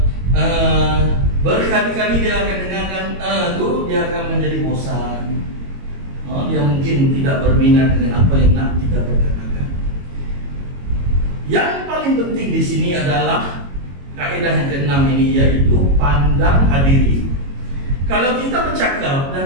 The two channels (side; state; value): left; late; 22 ms